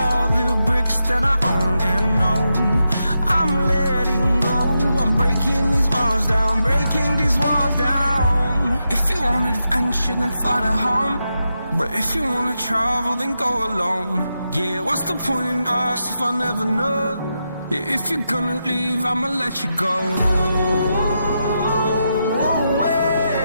the bricks that I own and know. I'm letting go, I'm breaking these walls down, breaking these walls down. If you want adventure, then fly to home. But if you wanna travel, then go alone. Yeah, what's the point in us if I never know? Yeah, if you're gonna leave, I'ma let you go.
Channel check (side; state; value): both; inverted; correlation -0.86